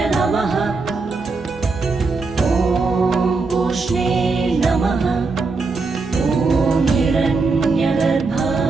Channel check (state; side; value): quieter; left; 4.0 dB